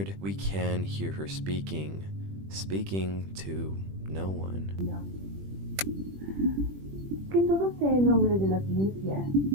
we can hear her speaking to no one. Que todo sea en nombre de la ciencia.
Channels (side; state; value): left; late; 21 ms